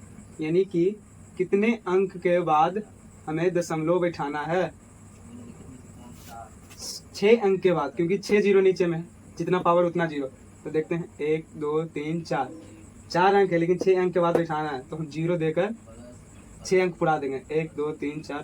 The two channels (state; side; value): identical; both; correlation 1.00